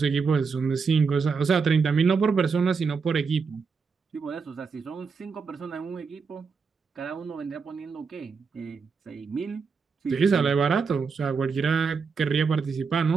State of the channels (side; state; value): left; quieter; 5.3 dB